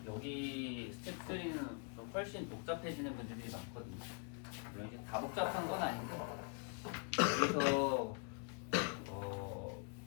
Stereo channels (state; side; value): quieter; right; 36.6 dB